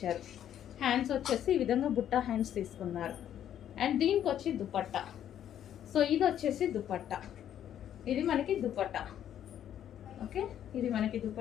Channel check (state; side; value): quieter; right; 10.4 dB